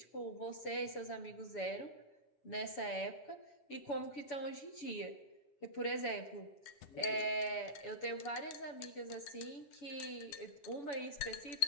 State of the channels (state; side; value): late; right; 7.0 ms